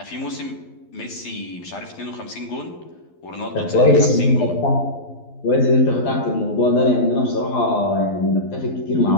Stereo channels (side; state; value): right; late; 12 ms